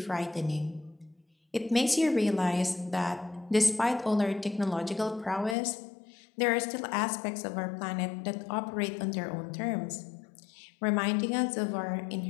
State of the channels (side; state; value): right; drops out; at 5.6 s